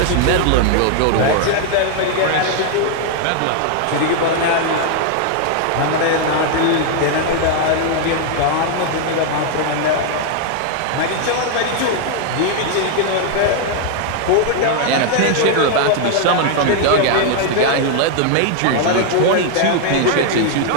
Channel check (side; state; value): both; different; correlation 0.00